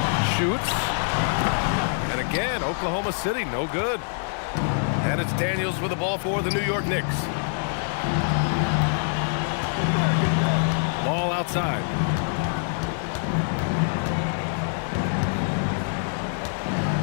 shoots. And again, Oklahoma City, no good. And it's Daniels with the ball for the New York Knicks. Ball outside.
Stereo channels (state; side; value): silent; right; digital silence